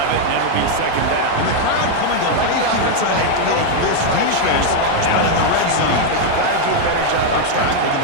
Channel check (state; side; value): different; both; correlation 0.00